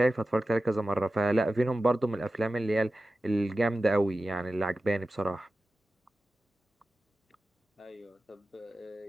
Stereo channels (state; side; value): normal; both; correlation 0.94